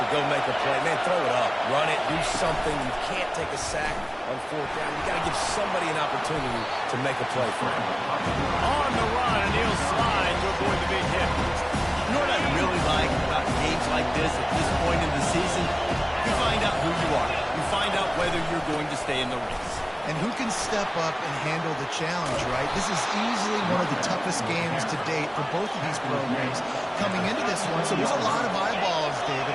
go make a play. Man, throw it up, run it, do something. You can't take a sack on 4th down. You got to give somebody an opportunity to make a play for him. On the run, and he'll slide to avoid the big hit. You know what I really like about games like this at this point in the season? You find out who you are. You find out whether you're going to stay in the race. And who can step up and handle the challenge, right? This is easily one of the toughest games to date for both of these programs coming into this one. So there's a lot of eyeballs, David,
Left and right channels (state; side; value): identical; both; correlation 1.00